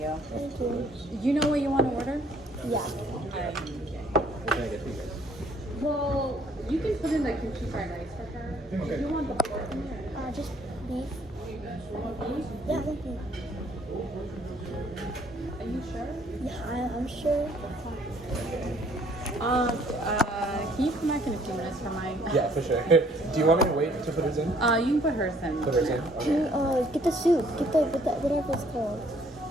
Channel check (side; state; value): both; normal; correlation 0.62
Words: thank you. You know what you want to order? Yeah. Well, you can put in the kimchi fried rice for her. Okay. If you want the pork in there. Just beef. Yeah, thank you. Are you sure? Yeah, I'm sure. Can you come back in a few minutes for mine? Yeah, for sure. Do you want me to wait to put his in? You can put hers in. Put hers in? Can Okay. you get the soup? Get the whatever it's called.